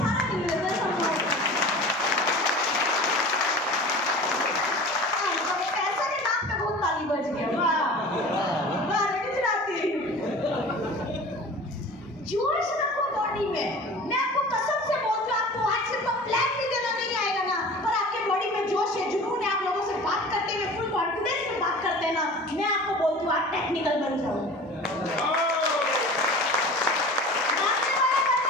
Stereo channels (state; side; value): normal; both; correlation 0.39